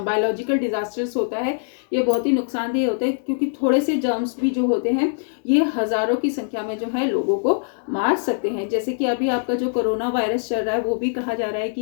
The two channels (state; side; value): silent; right; digital silence